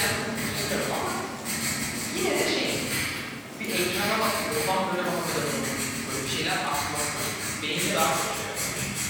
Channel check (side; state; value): both; identical; correlation 1.00